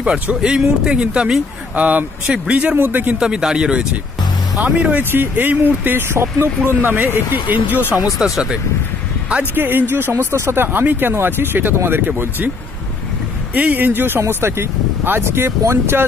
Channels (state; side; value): quieter; right; 4.1 dB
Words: পারছো এই মুহূর্তে কিন্তু আমি সেই ব্রিজের মধ্যে কিন্তু আমি দাঁড়িয়ে রয়েছি। আমি রয়েছি এই মুহূর্তে স্বপ্নপূরণ নামে একটি NGO সংস্থার সাথে। আজকে NGO সংস্থার সাথে আমি কেন আছি সেটা তোমাদেরকে বলছি। এই NGO সংস্থাটি আজকে